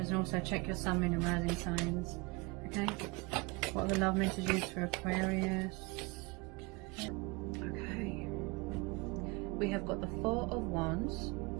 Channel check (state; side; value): quieter; left; 26.5 dB